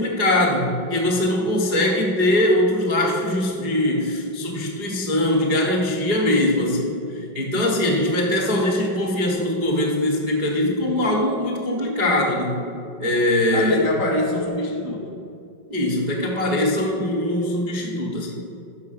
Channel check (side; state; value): left; late; 5.4 ms